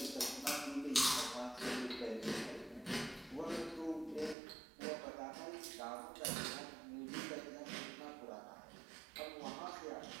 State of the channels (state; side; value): drops out; left; at 4.4 s